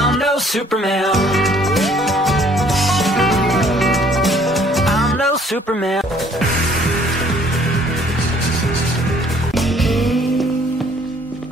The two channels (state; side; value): normal; both; correlation 0.59